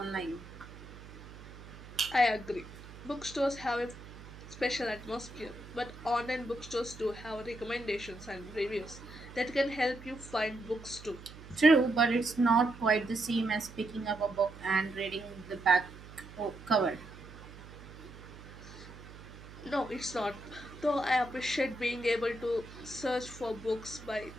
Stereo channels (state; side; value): noise; right; hum, 16 dB below the sound